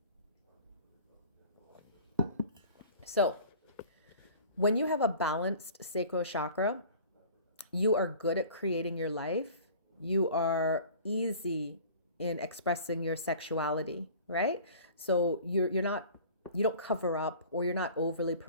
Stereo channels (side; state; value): both; inverted; correlation -0.45